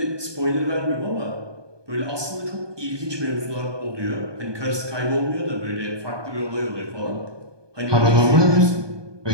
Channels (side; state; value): left; late; 1.2 ms